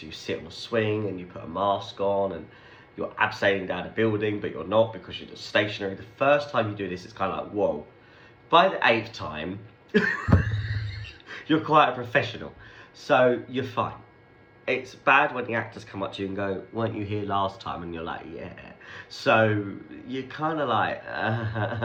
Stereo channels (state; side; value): identical; both; correlation 1.00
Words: you sit on a swing and you put a mask on and you're abseiling down a building, but you're not, because you're just stationary. The first time you do this, it's kind of like, whoa. By the 8th time, you're quite a professional, so you're fine. It's bad when the actors come up to you and go, weren't you here last time? And you're like, yeah. So you're kind of like,